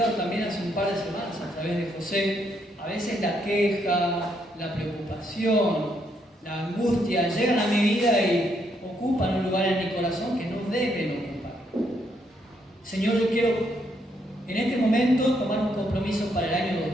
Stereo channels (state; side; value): normal; both; correlation 0.75